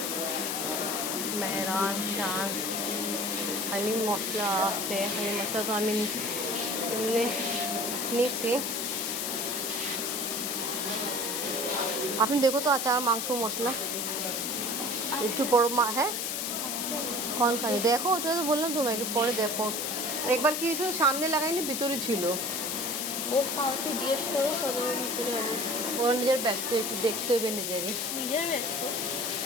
মেহরান শান হালিম মশলা আছে। হালিম মশলা তো আমি নিছি। আপনি দেখো তো আচার মাংস মশলা একটু বড় হ্যাঁ कौन खाई देखो ওটা তো বললাম তোমাকে পরে দেখো। একবার কি হয়েছিল সামনে লাগাইনি ভিতরে ছিল। ও কাউকে জিজ্ঞেস করো কত ভিতরে হবে। ওর নিজের ব্যস্ত একটু দেখতে হবে নিজেরই ব্যস্ত।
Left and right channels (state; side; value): noise; left; hiss, 1 dB below the sound